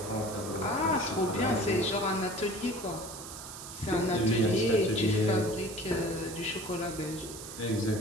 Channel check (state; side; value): noise; right; hiss, 11 dB below the sound